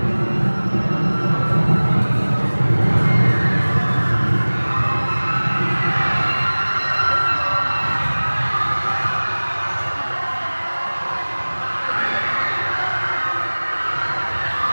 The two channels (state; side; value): inverted; both; correlation -1.00